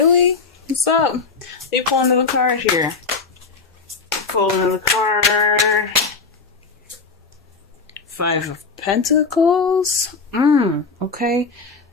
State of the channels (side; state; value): right; quieter; 4.7 dB